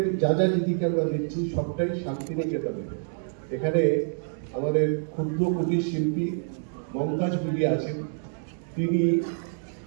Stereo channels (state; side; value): silent; left; digital silence